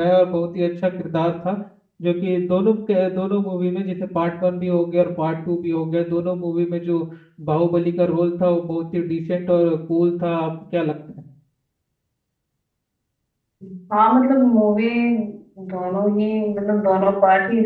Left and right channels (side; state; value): both; identical; correlation 1.00